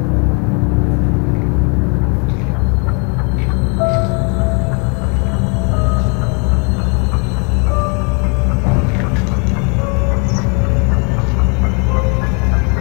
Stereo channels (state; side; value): quieter; right; 35.7 dB